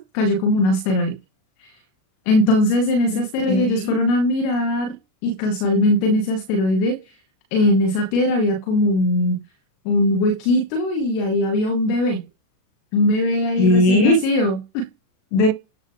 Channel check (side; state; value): right; late; 37 ms